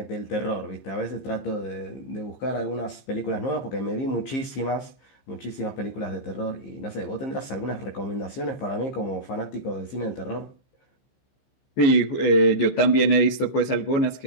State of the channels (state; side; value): late; right; 15 ms